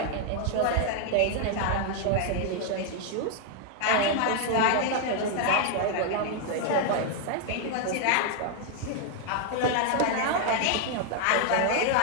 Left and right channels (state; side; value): different; both; correlation 0.00